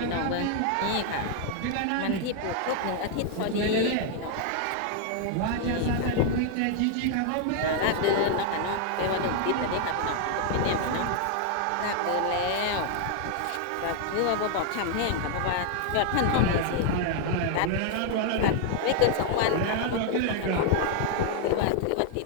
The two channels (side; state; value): both; different; correlation 0.00